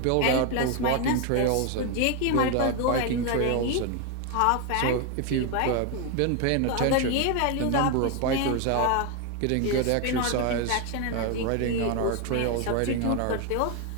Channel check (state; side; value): different; both; correlation 0.01